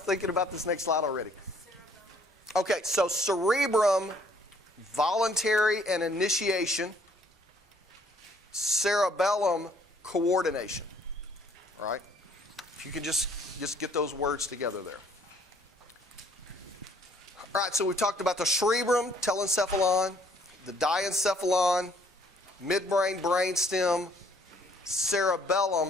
about this next slide already. Okay, so cerebrum, voluntary and initiation. Cerebellum, coordination. All right? If you can just get those words together there. All right, so we've talked about the cerebrum, telencephalon, the diencephalon, midbrain, brainstem,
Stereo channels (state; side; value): normal; both; correlation 0.62